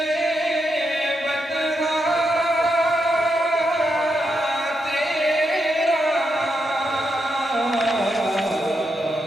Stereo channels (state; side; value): normal; both; correlation 0.83